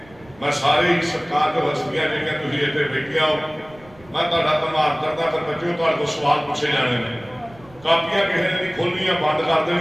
मैं सारे ही सरकार के हस्तियां जिहड़ियां तुसीं इत्थे बैठियां हो, मैं तुहाडा धन्नवाद करदा। फिर बच्चों तुहाडे कोल सवाल पूछे जाने ने, कापियां किसी ने नहीं खोलनियां, बंद कर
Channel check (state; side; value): noise; right; rumble, 24 dB below the sound